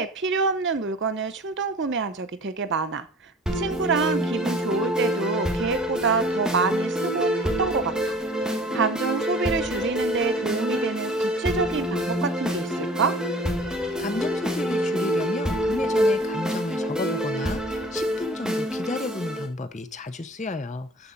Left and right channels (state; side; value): normal; both; correlation 0.46